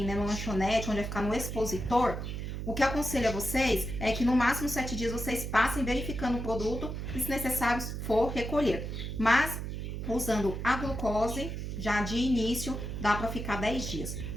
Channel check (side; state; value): right; noise; hum, 5 dB below the sound